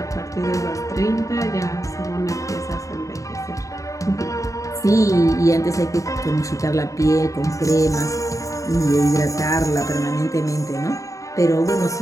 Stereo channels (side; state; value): right; late; 0.16 ms